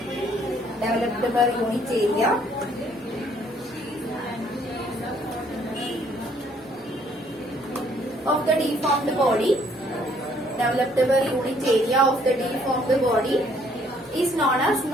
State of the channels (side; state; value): both; normal; correlation 0.64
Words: Developed per unit area of the deformed body. Developed per unit area of the deformed body is known as